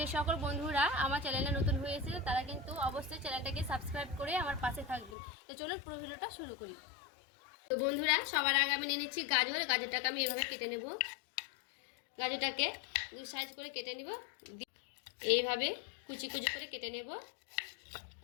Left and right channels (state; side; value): drops out; right; at 5.2 s